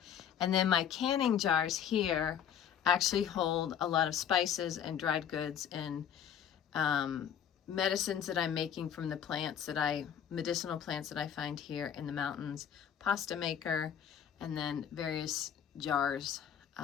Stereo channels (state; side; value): quieter; right; 8.9 dB